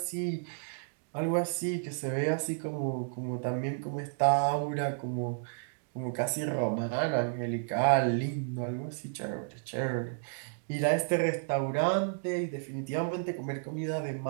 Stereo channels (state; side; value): silent; left; digital silence